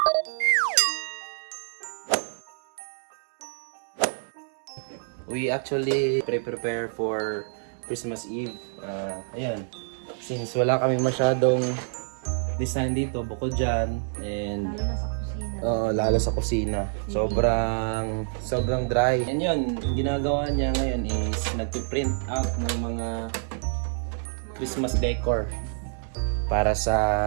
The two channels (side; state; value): left; silent; digital silence